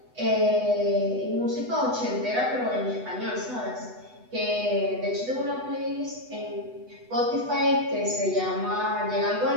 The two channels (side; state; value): left; late; 8.1 ms